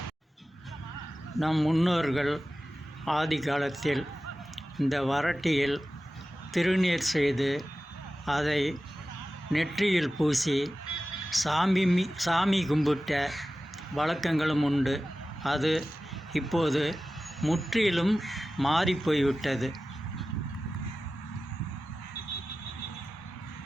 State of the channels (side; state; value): both; normal; correlation 0.95